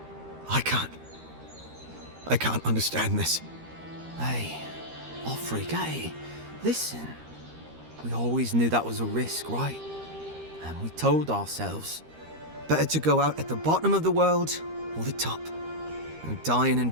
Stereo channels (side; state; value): left; late; 13 ms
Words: I can't understand this. Hey, Offreak, hey, listen. We always knew that was a risk, right? And we told ourselves. Better to go out at the bottom of the world or the top. And dying in